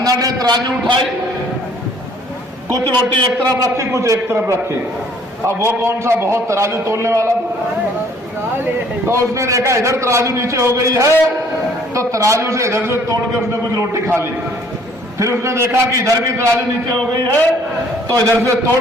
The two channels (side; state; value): both; normal; correlation 0.58